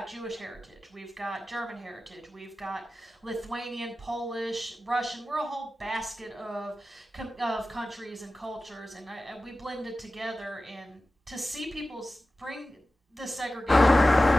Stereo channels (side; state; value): both; normal; correlation 0.95